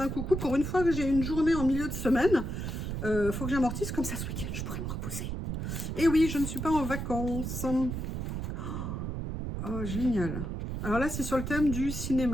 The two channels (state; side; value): noise; right; rumble, 4 dB below the sound